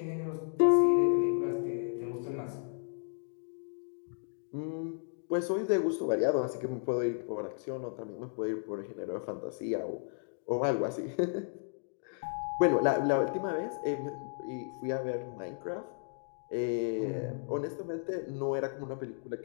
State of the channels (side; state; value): right; silent; digital silence